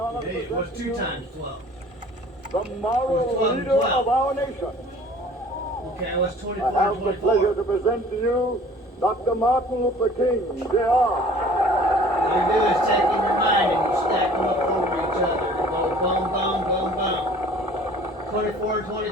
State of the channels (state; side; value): normal; both; correlation 0.50